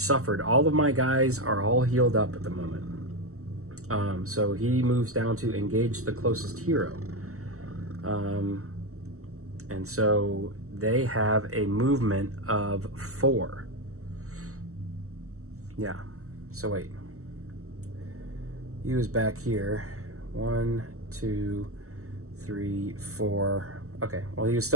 All of my guys are all healed up at the moment. So he moves down to engage the closest hero. And so they have a movement of 4. Yeah. So wait. He was back here. 1, 2, 3, 4. Okay. Well, he was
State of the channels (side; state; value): left; late; 0.64 ms